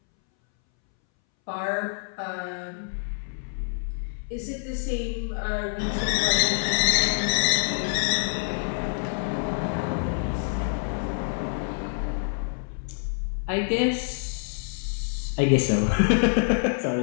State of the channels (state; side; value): silent; right; 61 dB below the other